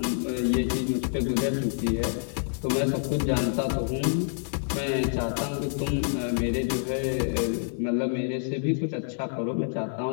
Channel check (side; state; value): right; silent; digital silence